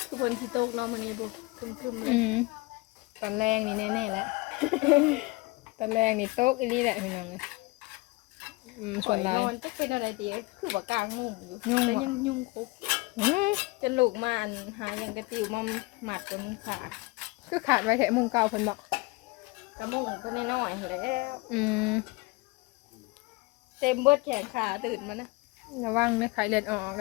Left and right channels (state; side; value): quieter; right; 24.2 dB